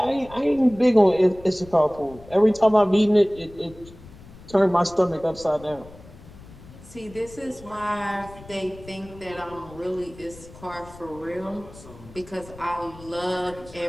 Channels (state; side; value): noise; left; rumble, 20 dB below the sound